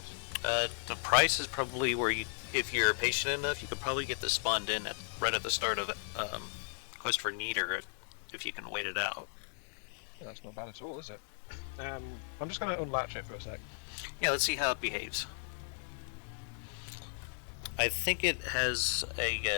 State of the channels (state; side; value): silent; right; digital silence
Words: The price is probably where if you're patient enough, you could probably get this spawned in right at the start of Quest for Neater, if you can wait it out. Yeah, that's not bad at all, is it? I'm just going to unlatch it for a sec. Yeah, let's see how it behaves. I think it has